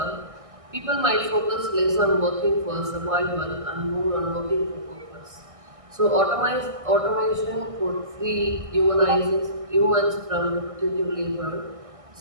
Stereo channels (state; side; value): late; left; 1.6 ms